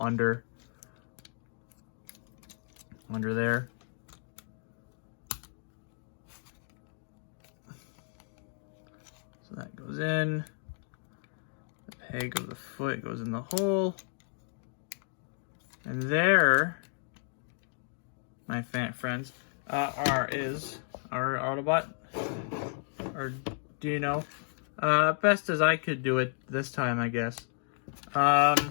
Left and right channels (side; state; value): right; silent; digital silence